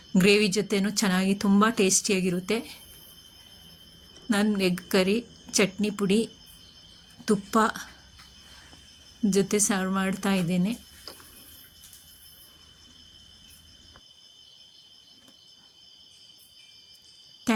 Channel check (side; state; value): both; identical; correlation 1.00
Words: ಗ್ರೇವಿ ಜೊತೆನೂ ಚೆನ್ನಾಗಿ ತುಂಬ ಟೇಸ್ಟಿಯಾಗಿರುತ್ತೆ. ನಾನು ಎಗ್ ಕರಿ ಚಟ್ನಿ ಪುಡಿ ತುಪ್ಪ ಜೊತೆ ಸರ್ವ್ ಮಾಡ್ತಾ ಇದ್ದೇನೆ.